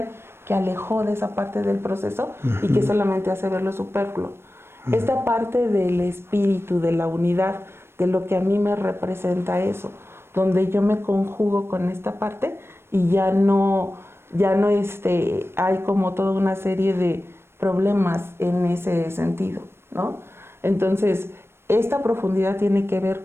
que alejó de esa parte del proceso y que solamente hace ver lo superfluo. Esta parte del espíritu, de la unidad, de lo que a mí me representa eso, donde yo me conjugo con esta parte y ya no hay como toda una serie de problemas en ese sentido, ¿no? Entonces, esta profundidad tiene que ver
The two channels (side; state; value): left; late; 0.12 ms